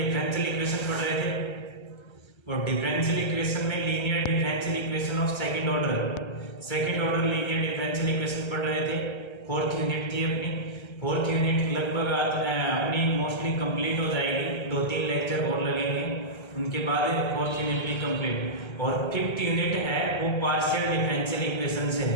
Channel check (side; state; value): right; late; 1.3 ms